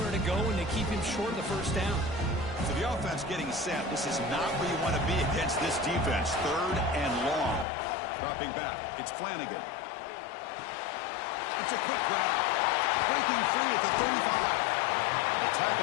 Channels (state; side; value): drops out; right; at 7.7 s